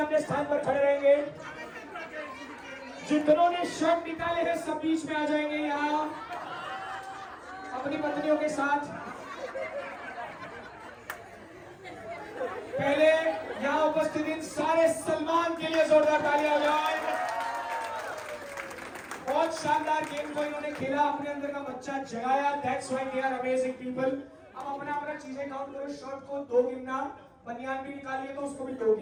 स्थान पर खड़े रहेंगे। जितनों ने शर्ट निकाले हैं सब बीच में आ जाएंगे यहाँ अपनी पत्नियों के साथ। पहले यहाँ उपस्थित उपस्थित इन सारे सलमान के लिए जोरदार तालियां बजाएं। बहुत शानदार गेम को इन्होंने खेला, अपने अंदर का बच्चा जगाया। That's why they are amazing people. अब अपना अपना चीजें काउंट करो। शर्ट को 2 गिनना, बनियान भी निकालिए तो उसको भी 2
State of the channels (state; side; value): identical; both; correlation 1.00